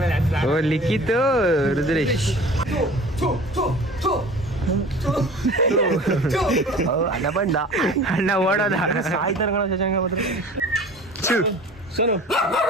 ಓ ಲಿಖಿತ್ ರುದ್ರೇಶ್. ಅಣ್ಣ ಬಂದ, ಅಣ್ಣ ಓಡೋದ.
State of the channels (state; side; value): normal; both; correlation 0.42